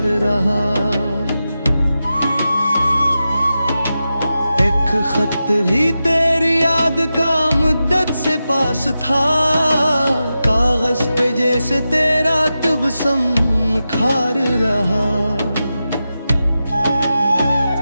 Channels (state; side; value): inverted; both; correlation -0.91